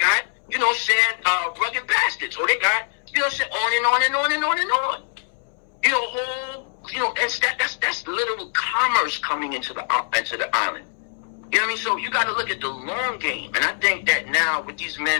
you know, saying, Rugged Bastards. Oh, they got, you know, saying on and on and on and on and on. You know, whole, you know, and that's literal commerce coming into the island. You know what I mean? So you got to look at the long game. And I think that now with these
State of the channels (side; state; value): right; silent; 63 dB below the other